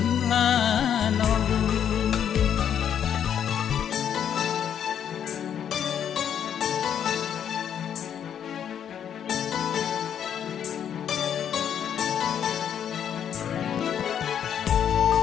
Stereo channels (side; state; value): right; quieter; 8.9 dB